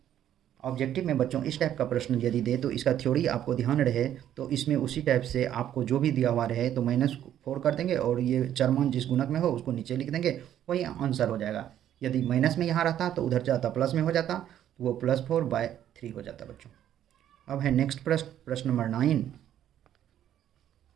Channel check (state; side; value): quieter; left; 11.0 dB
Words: ऑब्जेक्टिव में बच्चों इस टाइप का प्रश्न यदि दे तो इसका थ्योरी आपको ध्यान रहे तो इसमें उसी टाइप से आपको जो भी दिया हुआ रहे तो -4 कर देंगे और ये चरमान जिस गुणक में हो उसको नीचे लिख देंगे, वही आंसर हो जाएगा। यदि माइनस में यहाँ रहता तो उधर जाता प्लस में हो जाता, तो वो +4/3 हो जाता बच्चों। अब है नेक्स्ट प्रश्न नंबर 9